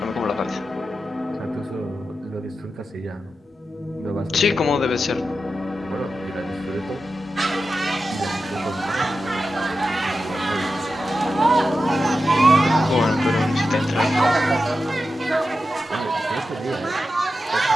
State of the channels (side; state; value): both; normal; correlation 0.91